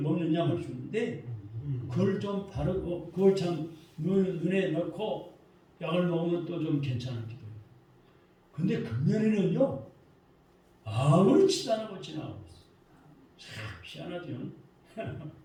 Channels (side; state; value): both; identical; correlation 1.00